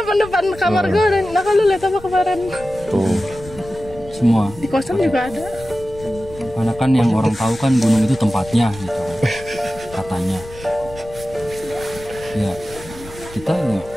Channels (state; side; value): noise; left; rumble, 17 dB below the sound